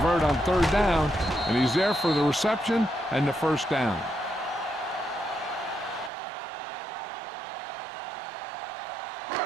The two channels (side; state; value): left; drops out; at 6.1 s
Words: on third down, and he's there for the reception and the first down.